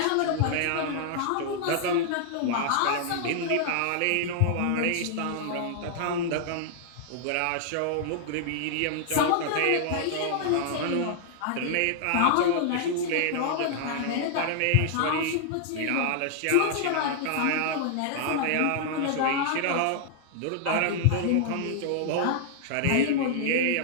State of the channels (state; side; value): different; both; correlation -0.01